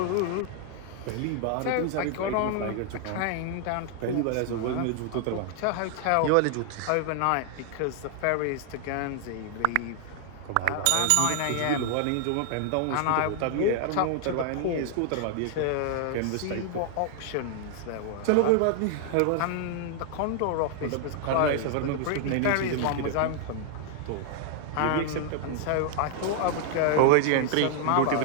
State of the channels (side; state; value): both; different; correlation 0.00